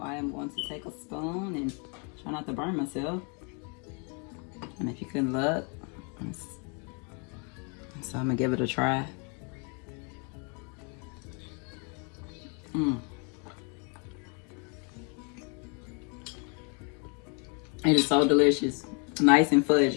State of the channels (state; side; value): quieter; right; 36.0 dB